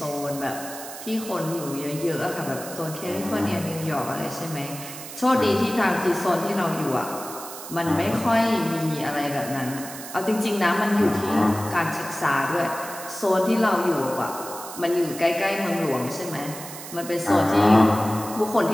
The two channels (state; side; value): noise; right; hiss, 12 dB below the sound